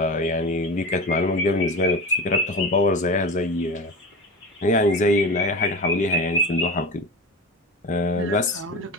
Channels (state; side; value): normal; both; correlation 0.27